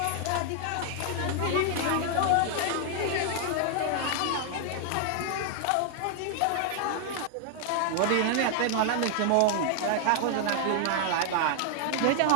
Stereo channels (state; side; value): different; both; correlation 0.00